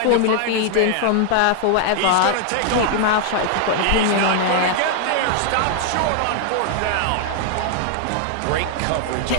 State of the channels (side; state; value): both; different; correlation 0.00